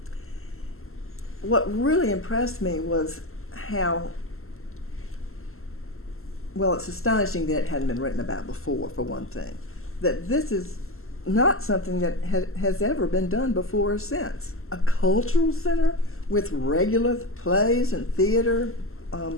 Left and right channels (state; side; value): late; right; 0.62 ms